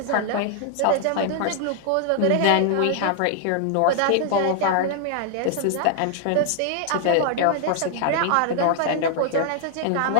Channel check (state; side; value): different; both; correlation 0.00